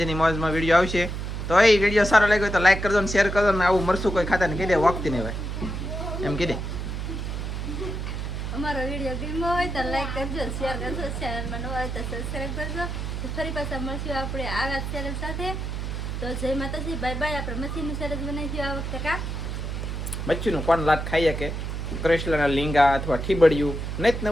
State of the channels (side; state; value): right; noise; hum, 4 dB below the sound